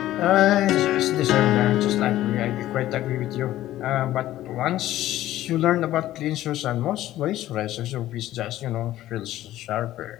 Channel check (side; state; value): right; quieter; 14.3 dB